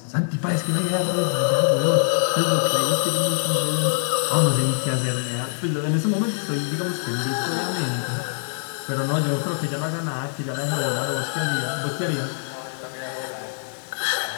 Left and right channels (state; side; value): silent; right; digital silence